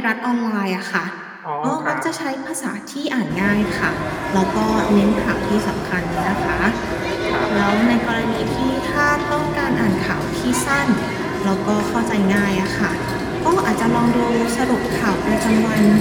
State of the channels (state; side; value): identical; both; correlation 1.00